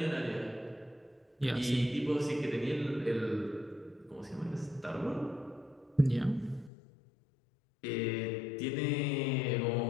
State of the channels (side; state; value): right; drops out; at 6.7 s